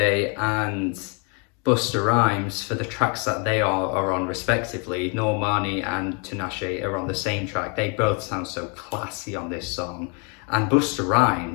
and Busta Rhymes for the tracks that they are on respectively. Normani and Tinashe are on the same track. They both sound so classy on this song. And Busta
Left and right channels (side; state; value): right; quieter; 35.4 dB